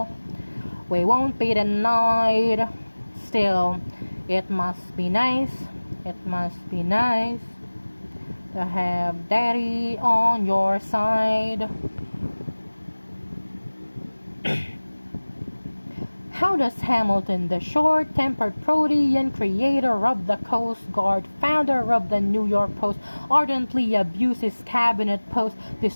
We won't be denied. Still, it must be nice. It must be nice to have daddy on your side. How does Hamilton, the short-tempered Protean creator of the Coast Guard, founder of the New York Post, ardently abuse his cabinet post,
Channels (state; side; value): inverted; both; correlation -1.00